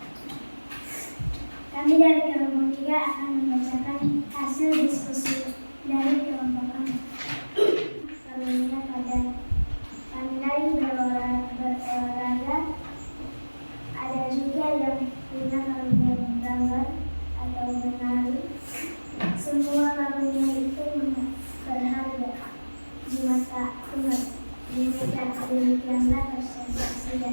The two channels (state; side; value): inverted; both; correlation -1.00